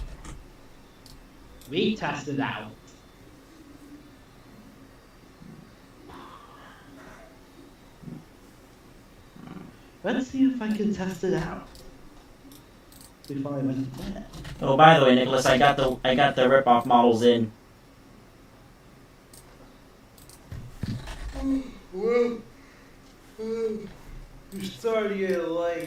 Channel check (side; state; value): both; identical; correlation 1.00